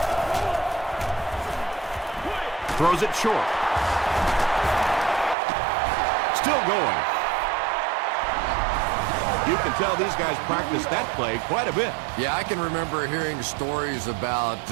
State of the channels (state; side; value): drops out; left; at 5.4 s